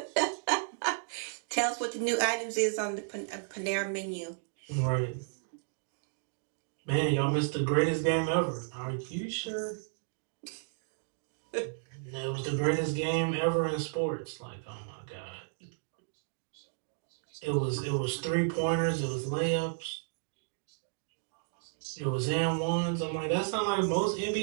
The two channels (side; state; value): left; silent; digital silence